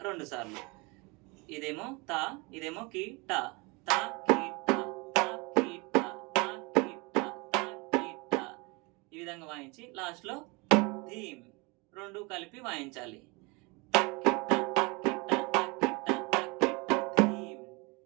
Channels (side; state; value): left; quieter; 27.5 dB